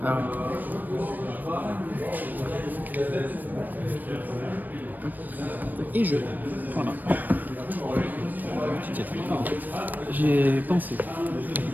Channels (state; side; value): late; left; 0.088 ms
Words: Ah ouais. Et je. Voilà. Tu t'y attendais pas en fait. J'ai pensé.